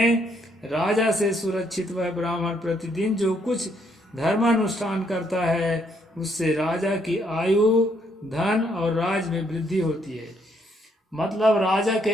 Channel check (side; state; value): both; normal; correlation 0.71